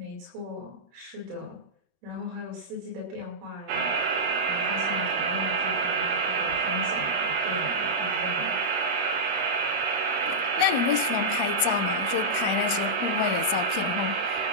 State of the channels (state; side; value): late; left; 21 ms